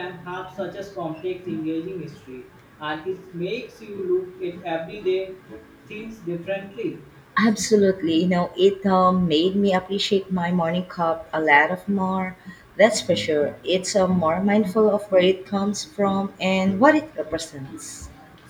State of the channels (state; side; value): identical; both; correlation 1.00